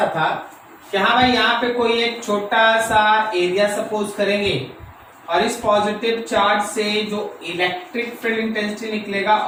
था कि हाँ भाई यहाँ पे कोई एक छोटा सा एरिया सपोज करेंगे और इस पॉजिटिव चार्ज से जो इलेक्ट्रिक फील्ड इंटेंसिटी निकलेगा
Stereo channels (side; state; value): both; identical; correlation 1.00